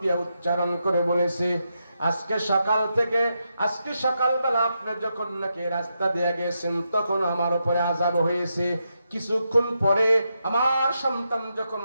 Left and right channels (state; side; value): inverted; both; correlation -0.84